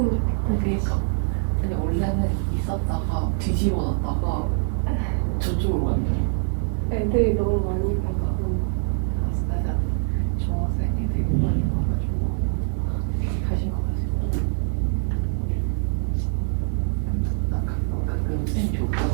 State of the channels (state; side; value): silent; left; 63 dB below the other